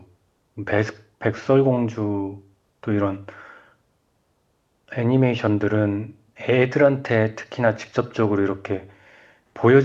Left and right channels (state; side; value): identical; both; correlation 1.00